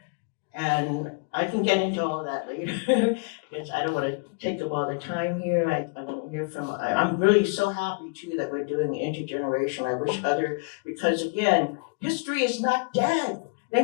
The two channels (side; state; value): right; quieter; 32.4 dB